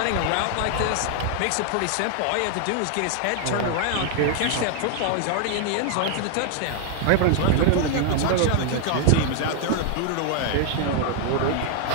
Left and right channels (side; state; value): both; different; correlation 0.00